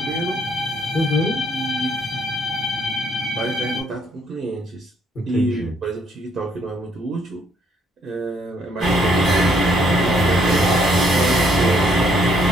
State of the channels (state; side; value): normal; both; correlation 0.68